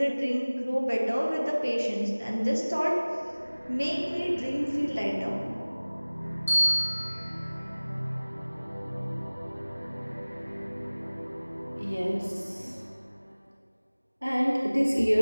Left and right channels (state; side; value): inverted; both; correlation -1.00